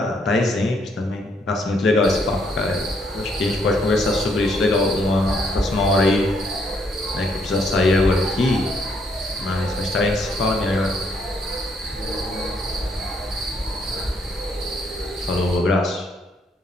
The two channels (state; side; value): normal; both; correlation 0.71